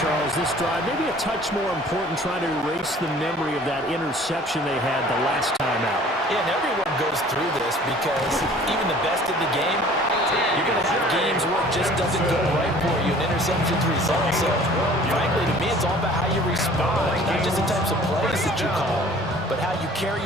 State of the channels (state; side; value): normal; both; correlation 0.50